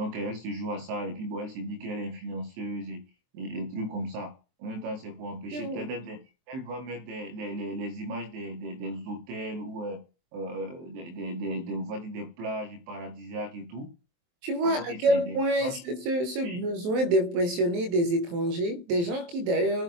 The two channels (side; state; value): left; late; 23 ms